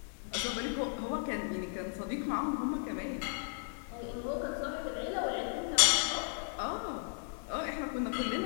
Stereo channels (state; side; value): silent; right; 54 dB below the other